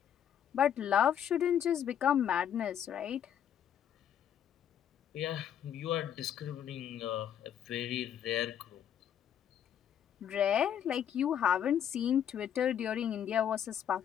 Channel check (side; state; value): right; quieter; 9.4 dB